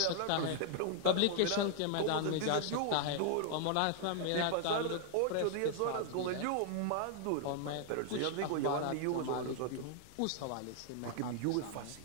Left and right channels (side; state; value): both; different; correlation 0.00